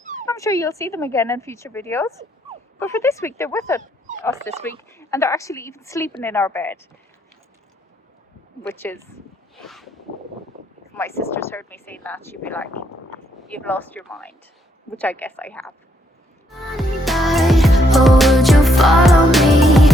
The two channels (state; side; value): normal; both; correlation 0.73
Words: I'm sure you'll see them again in future videos. But for this week, they're with us this week, and they're actually even sleeping in our bed. Which is, if my sisters heard me saying that, she'd be like, you've lost your mind. Which I guess I have. oh, would you follow me?